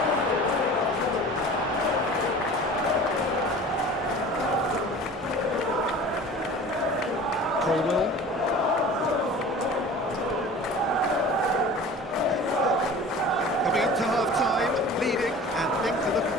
Colwell. Coming up to half-time, leading, and things are looking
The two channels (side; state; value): both; normal; correlation 0.40